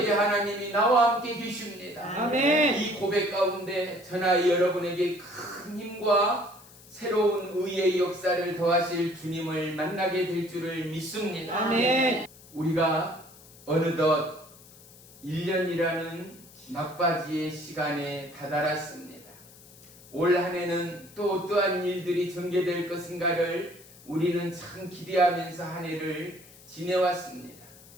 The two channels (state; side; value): noise; left; hiss, 22 dB below the sound